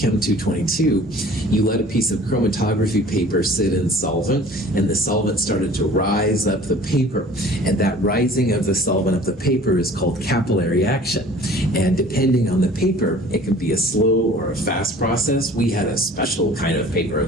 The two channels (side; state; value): both; normal; correlation 0.47